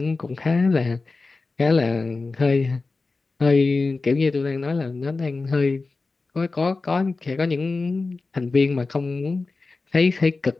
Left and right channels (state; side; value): quieter; right; 3.8 dB